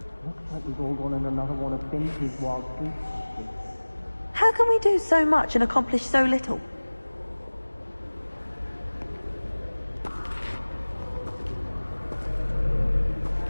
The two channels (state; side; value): inverted; both; correlation -1.00